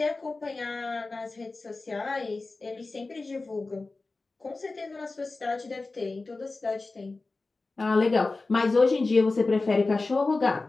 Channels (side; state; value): right; quieter; 3.5 dB